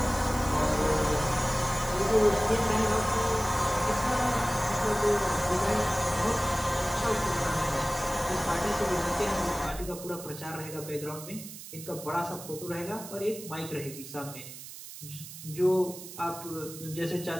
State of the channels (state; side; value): noise; right; hiss, 13 dB below the sound